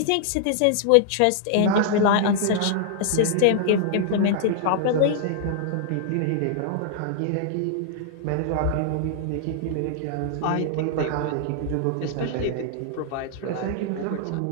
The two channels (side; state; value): both; different; correlation -0.01